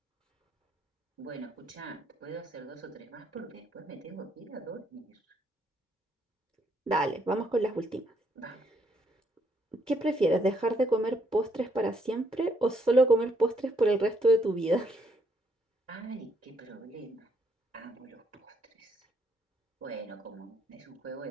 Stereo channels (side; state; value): both; normal; correlation 0.72